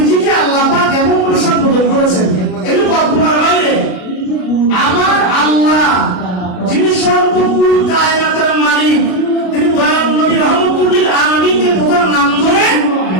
আল্লাহ পাক এমন কোন সম্বোধন করেছেন, এগুলো কল্পনার বাইরে। আমার আল্লাহ যিনি সর্বপুর কায়নাতের মালিক, তিনি দয়াল নবী রহমতুল লিল আলামিনকে প্রথম নাম ধরে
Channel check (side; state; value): right; late; 33 ms